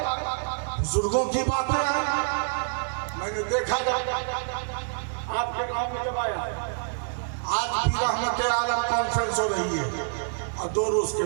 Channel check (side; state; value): left; silent; digital silence